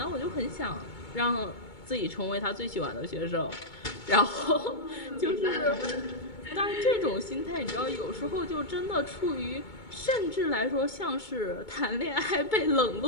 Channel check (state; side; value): late; right; 2.2 ms